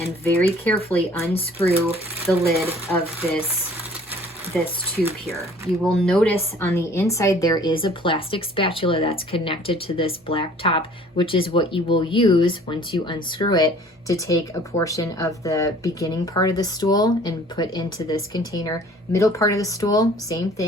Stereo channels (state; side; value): normal; both; correlation 0.52